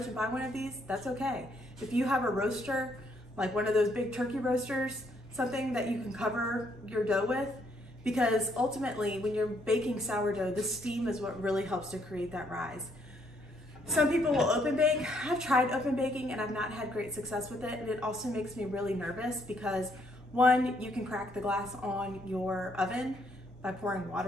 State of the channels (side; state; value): both; normal; correlation 0.70